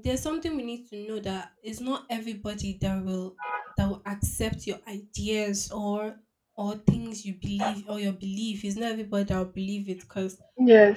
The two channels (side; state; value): both; identical; correlation 1.00